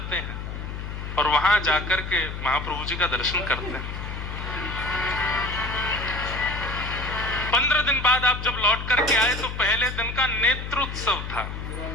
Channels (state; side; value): noise; left; hum, 7 dB below the sound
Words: हैं और वहां जाकर के महाप्रभु जी का दर्शन करते हैं। 15 दिन बाद आप जब लौट करके आए तो पहले दिन का नेत्रोत्सव था